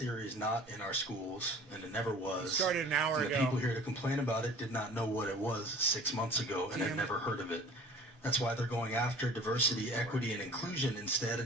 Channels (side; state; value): both; normal; correlation 0.45